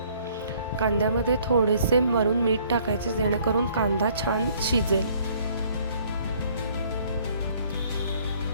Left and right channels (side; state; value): both; inverted; correlation -0.61